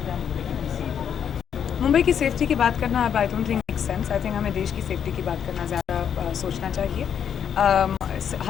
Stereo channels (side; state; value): right; quieter; 8.3 dB